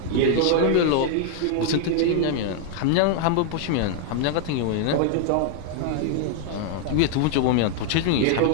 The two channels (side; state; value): both; different; correlation 0.00